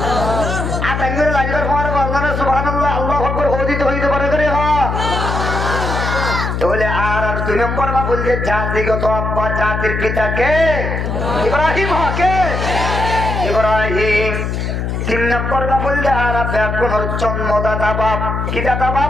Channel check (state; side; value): noise; left; hum, 2 dB below the sound